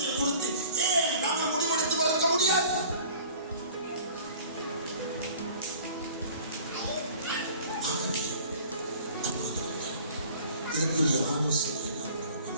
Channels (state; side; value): inverted; both; correlation -0.47